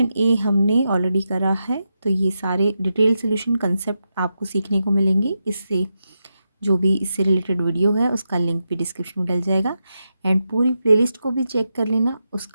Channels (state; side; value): inverted; both; correlation -0.87